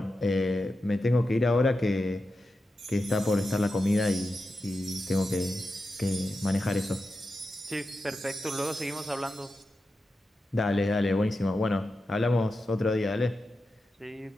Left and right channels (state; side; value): normal; both; correlation 0.90